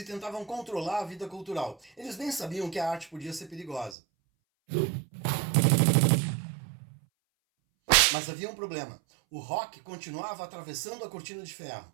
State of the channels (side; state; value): left; drops out; at 4.0 s